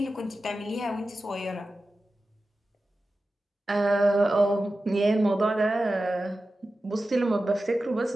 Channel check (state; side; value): normal; both; correlation 0.94